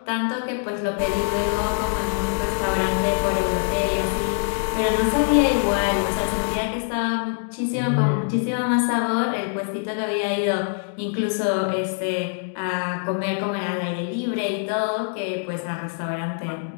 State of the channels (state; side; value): silent; right; digital silence